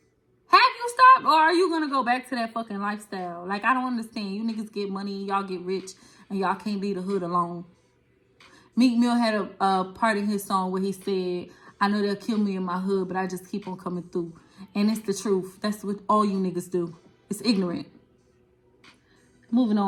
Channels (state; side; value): identical; both; correlation 1.00